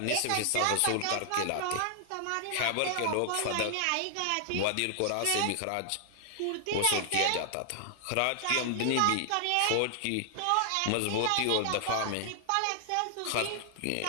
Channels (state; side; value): different; both; correlation 0.00